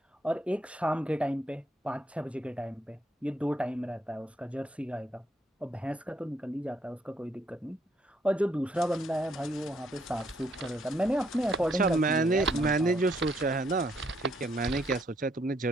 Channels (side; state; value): both; normal; correlation 0.71